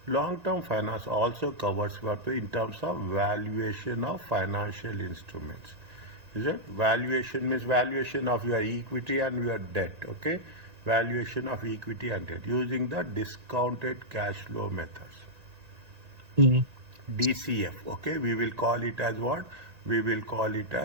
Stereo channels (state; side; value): late; left; 1.9 ms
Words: Long term finance also covers what in terms of valuation of financial instruments. Is it? Valuation means valuation of your equity and your debt. Okay, valuation of equity and debt using the discounted cash flow methods. DCF. Okay, we will call it as what? We will call it